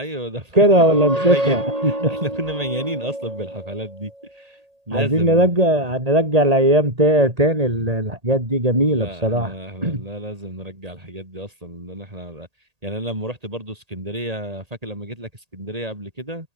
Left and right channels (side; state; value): left; late; 1.8 ms